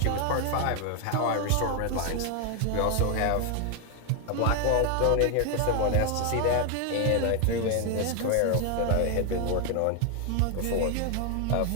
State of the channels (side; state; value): both; different; correlation 0.01